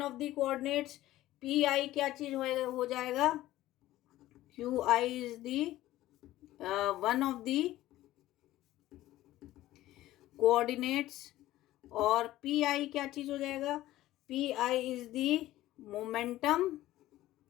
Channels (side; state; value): right; quieter; 15.4 dB